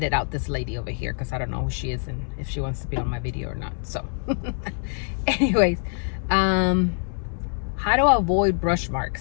out this lady over here because I don't know who she is and if she wants to be on my video or not. So anyways, how to avoid brush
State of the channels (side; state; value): right; silent; 56 dB below the other